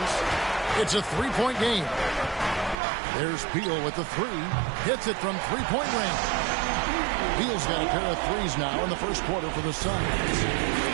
It's a three-point game. There's Beal with the 3. Hits it from three-point range. Beal's got a pair of threes now in the first quarter for the Suns.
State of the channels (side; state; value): left; drops out; at 2.8 s